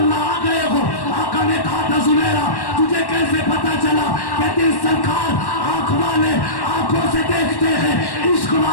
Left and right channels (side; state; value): right; late; 1.1 ms